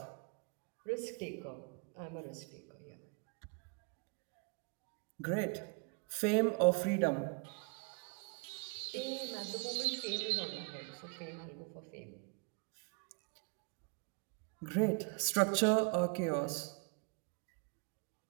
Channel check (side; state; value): left; quieter; 32.4 dB